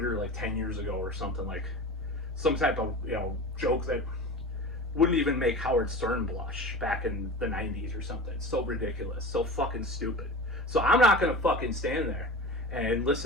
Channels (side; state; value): both; normal; correlation 0.32